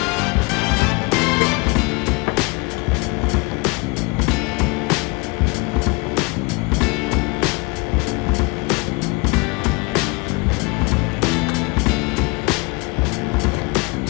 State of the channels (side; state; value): right; quieter; 28.3 dB